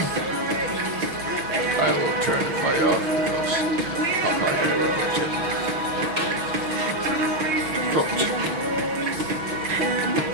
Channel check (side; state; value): left; late; 6.1 ms